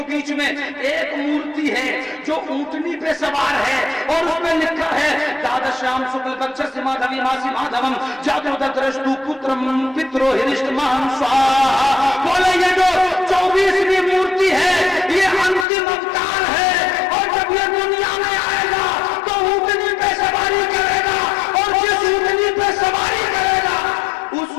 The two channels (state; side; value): drops out; right; at 15.7 s